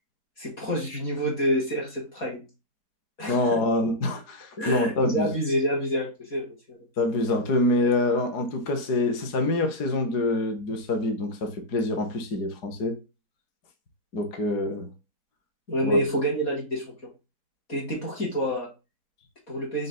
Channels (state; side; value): late; right; 4.2 ms